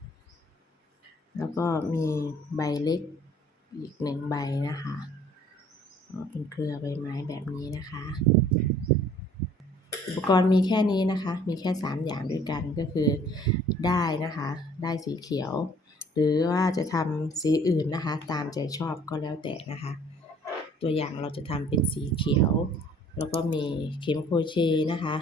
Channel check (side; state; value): both; normal; correlation 0.55